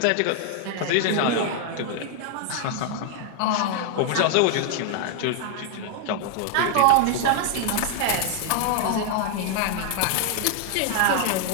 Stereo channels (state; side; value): different; both; correlation 0.00